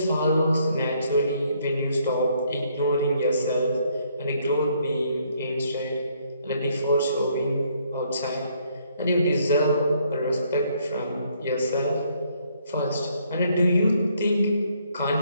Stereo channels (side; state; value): both; inverted; correlation -0.69